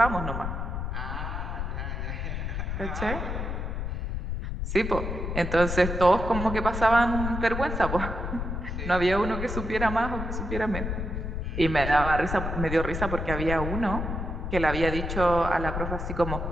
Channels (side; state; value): left; noise; rumble, 3 dB below the sound